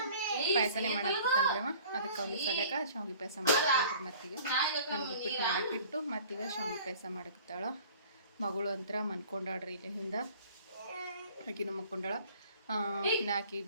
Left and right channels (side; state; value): both; inverted; correlation -0.49